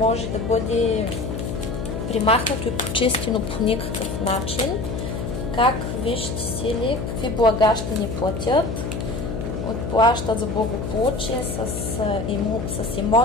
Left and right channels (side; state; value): left; noise; hum, 4 dB below the sound